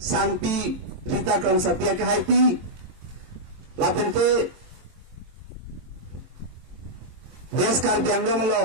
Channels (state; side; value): late; left; 23 ms